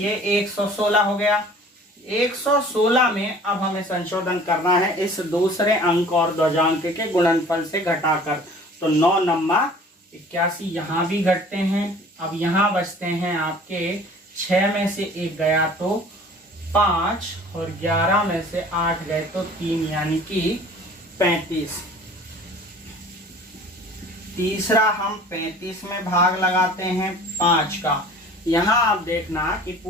116 हो गया। 116 में अब हमें संशोधन करना है इस दूसरे अंक और ध्वजांक के गुणनफल से घटाकर। तो 9 नम्मा 81 यहाँ भी घटते हैं। अब यहाँ बचते हैं आपके 6 में से 1 गया तो 5 और 11 में से 8 गए तो 3 यानी कि 35। तीसरा हम 35 में भाग लगाते हैं 5 का। यहाँ आप देखना कि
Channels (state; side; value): normal; both; correlation 0.47